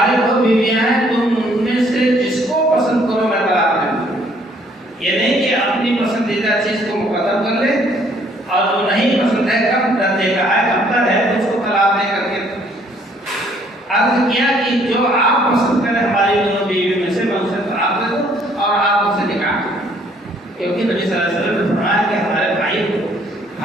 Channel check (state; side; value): normal; both; correlation 0.63